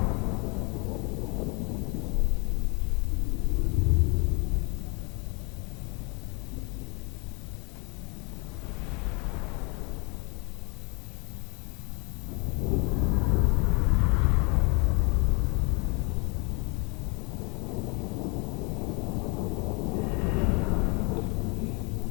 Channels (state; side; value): quieter; right; 31.9 dB